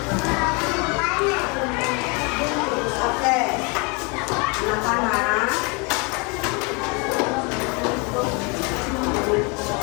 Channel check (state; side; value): quieter; right; 31.0 dB